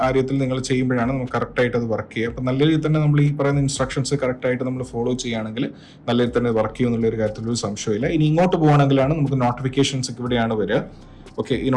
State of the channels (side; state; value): both; identical; correlation 1.00